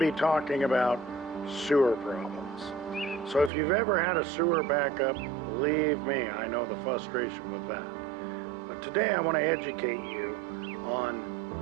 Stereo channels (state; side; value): drops out; left; at 3.5 s